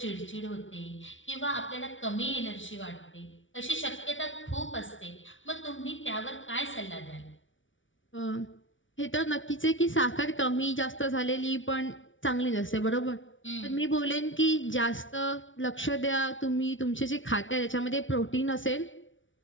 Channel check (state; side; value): late; right; 0.56 ms